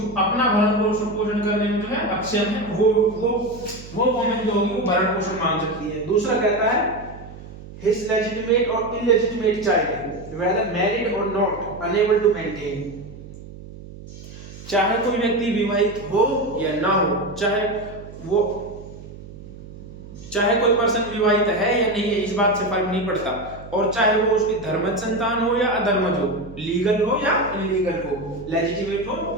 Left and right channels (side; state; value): right; noise; hum, 15 dB below the sound